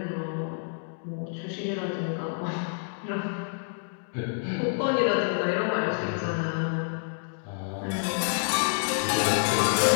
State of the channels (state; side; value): silent; right; digital silence